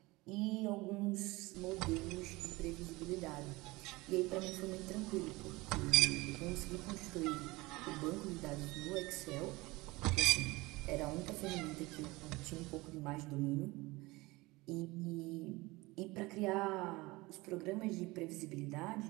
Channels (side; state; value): left; quieter; 22.1 dB